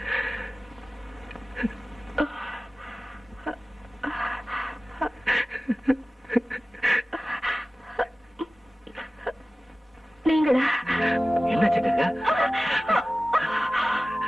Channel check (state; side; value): normal; both; correlation 0.96